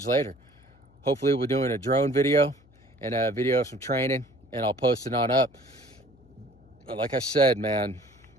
later. Hopefully we're doing a drone video and a video of some training, and I'll post it on up. But like I said, man,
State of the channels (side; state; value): left; noise; hum, 29 dB below the sound